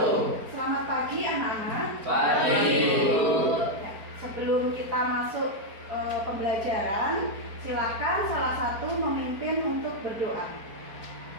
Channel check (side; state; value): left; late; 4.4 ms